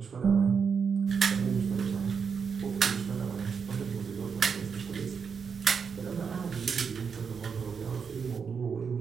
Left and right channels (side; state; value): left; quieter; 6.2 dB